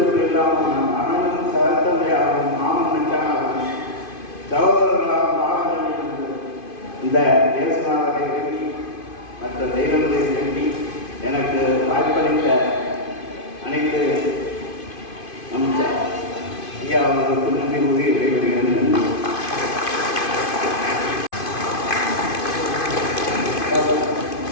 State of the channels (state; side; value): late; right; 2.5 ms